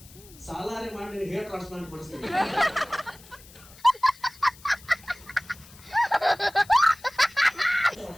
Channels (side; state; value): left; noise; hiss, 22 dB below the sound